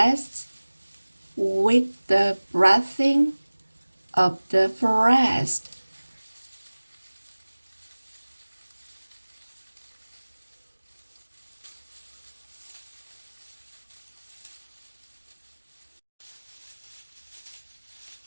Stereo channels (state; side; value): inverted; both; correlation -1.00